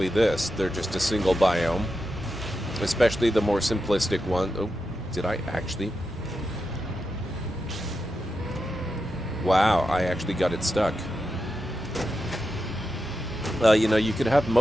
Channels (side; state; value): both; normal; correlation 0.88